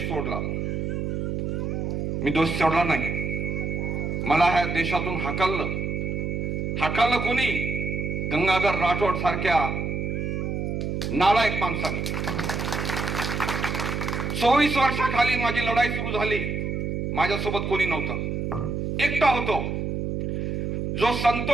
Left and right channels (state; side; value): noise; right; hum, 2 dB below the sound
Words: सोडला. मी दोष सोडला नाही. मला ह्या देशातून हाकललं कोणी? गंगाधर राठोड सारख्या नालायक माणसाने. 24 वर्षाखाली माझी लढाई सुरू झाली. माझ्यासोबत कोणी नव्हतं, एकटा होतो. जो